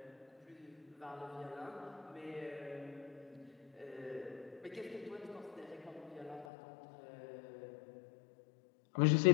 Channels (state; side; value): drops out; right; at 6.5 s